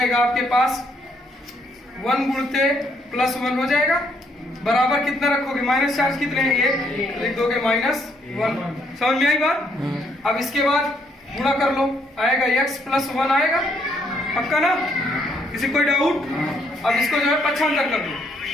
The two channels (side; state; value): both; normal; correlation 0.71